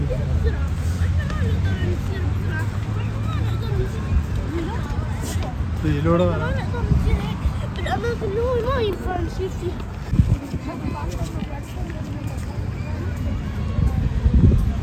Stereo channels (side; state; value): both; identical; correlation 1.00